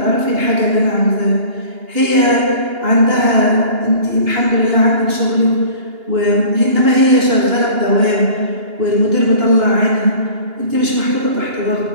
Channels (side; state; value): left; late; 2.8 ms